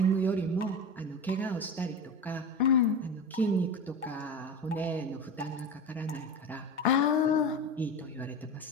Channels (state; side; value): normal; both; correlation 0.26